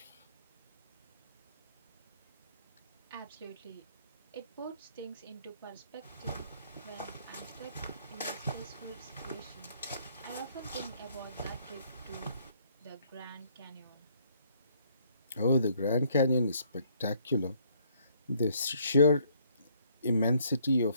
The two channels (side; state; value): both; inverted; correlation -0.66